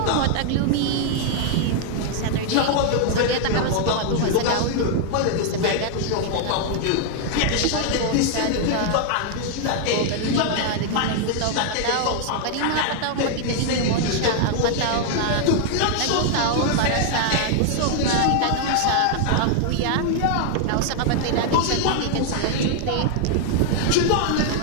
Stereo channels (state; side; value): different; both; correlation 0.00